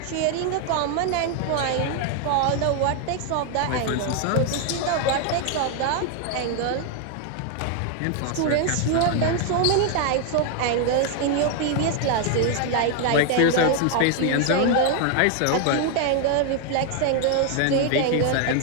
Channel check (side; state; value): both; different; correlation 0.00